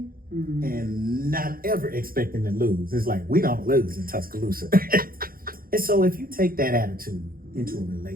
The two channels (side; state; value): left; late; 0.42 ms